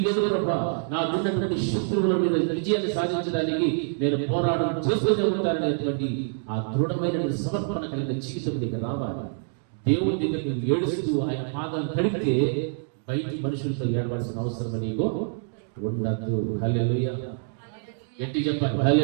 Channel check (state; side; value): silent; left; digital silence